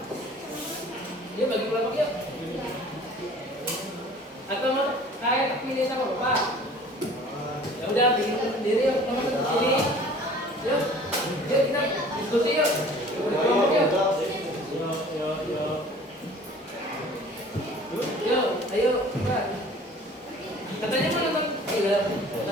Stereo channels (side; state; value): both; normal; correlation 0.48